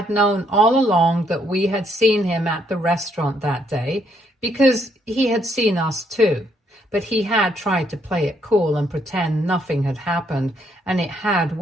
known all along that we had seen him at the restaurant that day because he had seen us too. But he had tried to play it cool and pretend nothing had happened, and it had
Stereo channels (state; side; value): normal; both; correlation 0.72